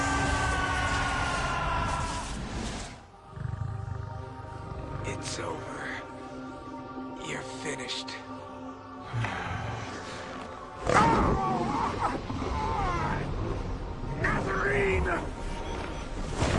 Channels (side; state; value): both; identical; correlation 1.00